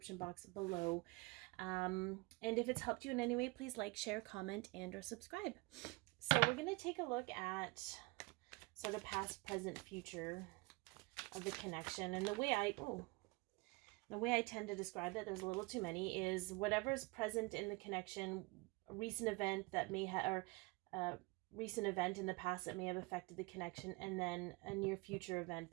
box below. And if it's helped you in any way, please like, share, comment, and or subscribe. So we're going to take a look at sort of past, present, future of the connection. And the way I tend to describe that, there's a little too many, is whatever's present in the connection, a recent event that may have, or recent event in the past that may have affected the connection, and then a near future event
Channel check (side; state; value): left; quieter; 25.5 dB